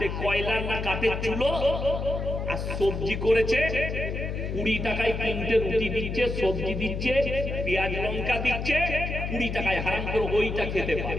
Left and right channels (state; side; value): noise; left; hum, 4 dB below the sound